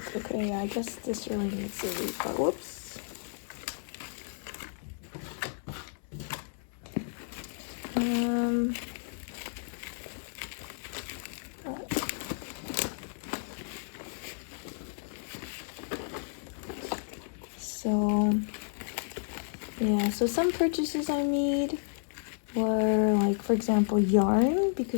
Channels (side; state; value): right; silent; 56 dB below the other